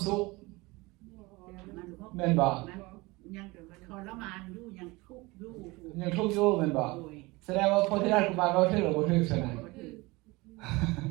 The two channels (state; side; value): quieter; left; 23.2 dB